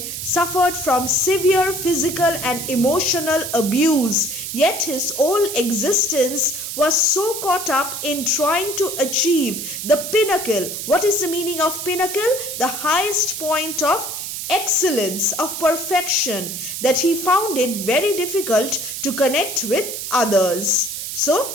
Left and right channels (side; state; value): right; noise; hiss, 6 dB below the sound